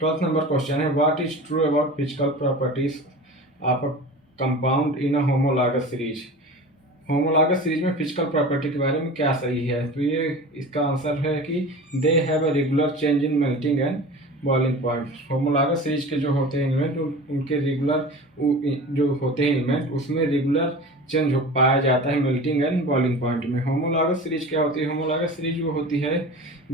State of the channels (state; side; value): normal; both; correlation 0.35